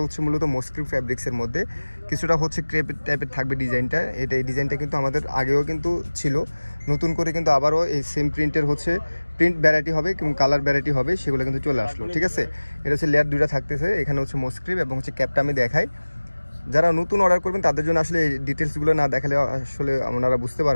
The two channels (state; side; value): inverted; both; correlation -1.00